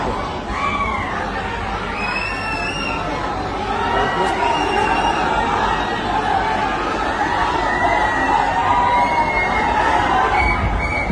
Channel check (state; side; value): identical; both; correlation 1.00